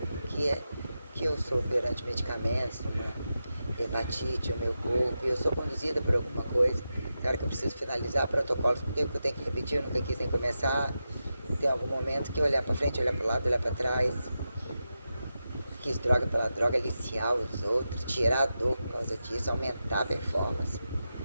que eu sou perante medicamentos, uma hepatite, o meu corpo, e eu sou conduzida por alguma coisa. Tem hora que eu preciso finalizar protocolos, porque eu tenho que repetir, eu nunca quis nem começar. Tem algum momento que olhar pra frente, olhar pro lado, olhar pra trás. Quis droga pela droga, aliciar os outros, tirar a dor por causa disso, aumentar a performance.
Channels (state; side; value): inverted; both; correlation -0.90